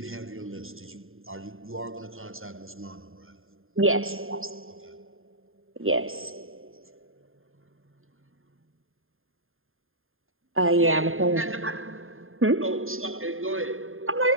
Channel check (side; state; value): left; late; 0.60 ms